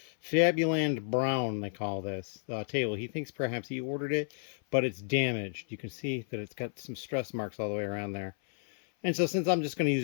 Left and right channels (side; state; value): right; silent; 57 dB below the other